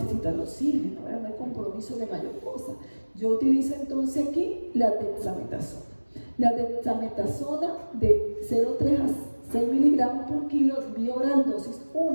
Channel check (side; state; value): both; inverted; correlation -1.00